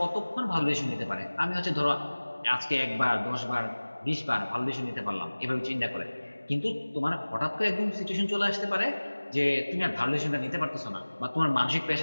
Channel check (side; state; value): both; inverted; correlation -1.00